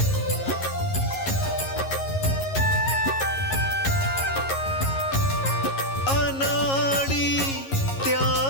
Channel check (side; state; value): right; late; 11 ms